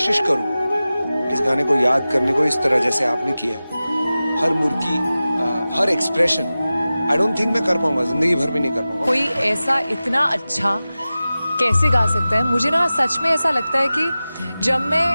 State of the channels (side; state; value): both; inverted; correlation -0.96